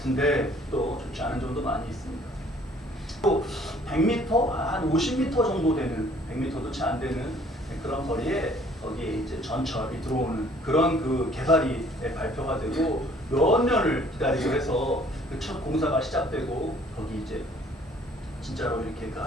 또 좋지 않은 점도 많이 있습니다. 또 100m, 한 50m 정도 되는, 100m도 채 안 되는 그런 거리에 거기에 이제 전철이 들어오는 그런 그 개발이 발표가 되고 몇 년을 기다리고 해서 그 첫 공사가 시작되고 거기 이제 진짜로 이렇게 그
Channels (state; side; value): normal; both; correlation 0.57